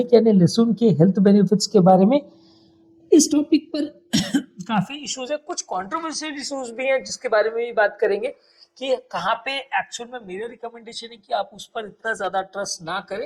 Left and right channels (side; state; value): both; identical; correlation 1.00